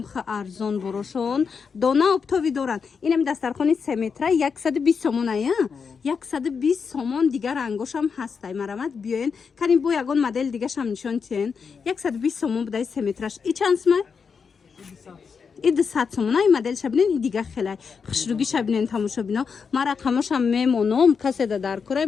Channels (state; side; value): quieter; right; 5.8 dB